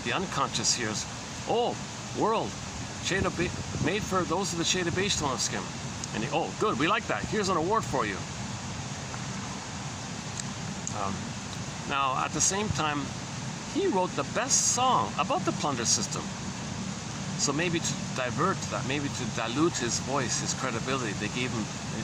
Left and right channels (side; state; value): both; identical; correlation 1.00